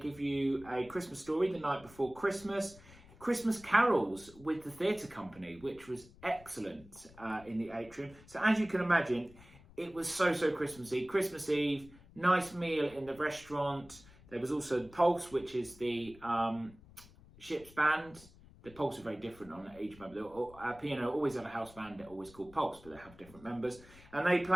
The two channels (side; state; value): left; noise; rumble, 22 dB below the sound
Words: you a Christmas story the night before Christmas. Christmas carols with the theatre company, which was excellent in the atrium. So as you can imagine, it was so Christmassy. Christmas Eve, nice meal in the restaurant. There was also the Pulse, which is the ship's band. The Pulse are very different on each member. P&O always have a house band, they're always called Pulse, but they have different members. And they